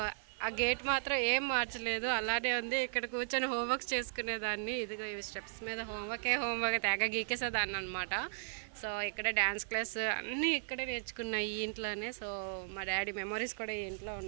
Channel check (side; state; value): left; silent; 54 dB below the other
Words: ఆ గేట్ మాత్రం ఏం మార్చలేదు, అలానే ఉంది. ఇక్కడ కూర్చొని హోంవర్క్స్ చేసుకునేదాన్ని. ఇదిగో ఈ స్టెప్స్ మీద హోంవర్క్ తెగ గీకేసేదాన్ని అనమాట. సో ఇక్కడ డ్యాన్స్ క్లాస్ అన్నీ ఇక్కడే నేర్చుకున్నాయి ఈ ఇంట్లోనే. సో మా డాడీ మెమరీస్ కూడా ఈ ఇంట్లో